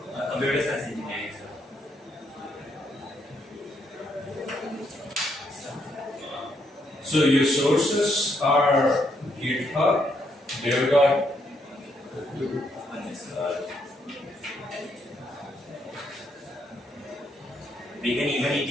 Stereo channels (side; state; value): both; normal; correlation 0.75